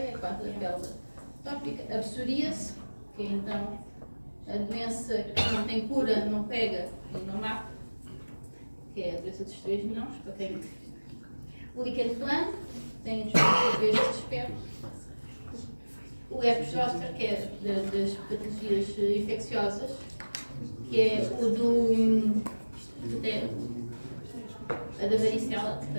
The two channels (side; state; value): both; inverted; correlation -1.00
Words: quase a pele atópica. A psoríase, que é então a doença que não tem cura, não pega e não mata, que é a doença dos 3 mãos, para quem. O líquen plano, tem estes aspectos. O herpes zoster, que é das patologias infecciosas, que é o a da varicela, que